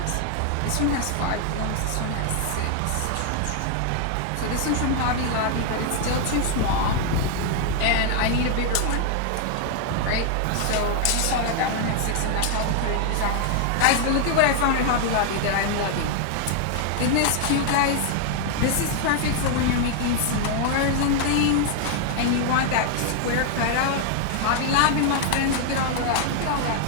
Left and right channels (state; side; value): different; both; correlation 0.00